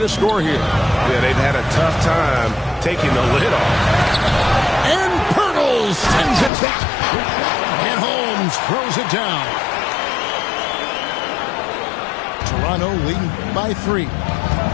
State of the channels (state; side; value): drops out; right; at 6.5 s